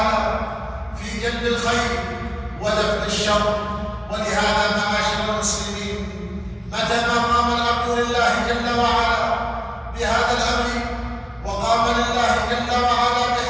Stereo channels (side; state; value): both; identical; correlation 1.00